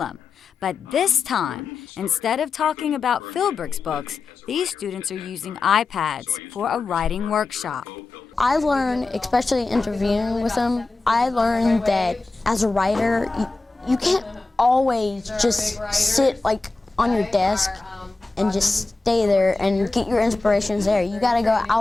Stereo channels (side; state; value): right; quieter; 3.6 dB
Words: But this time, instead of talking about Philbrick's books, these students are using iPads for a writing workshop. I learned, especially interviewing with him, I learned that as a writer, you can't always just sit like on your desk and just stay there and get your inspirations there. You gotta go